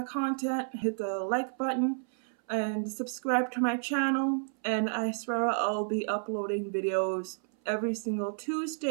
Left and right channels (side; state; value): left; silent; 57 dB below the other